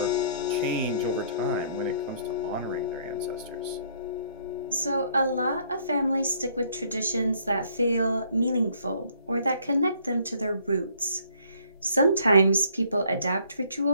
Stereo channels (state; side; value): inverted; both; correlation -0.63